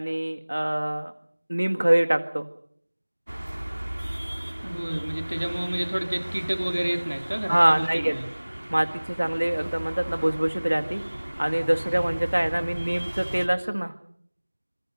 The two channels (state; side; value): inverted; both; correlation -1.00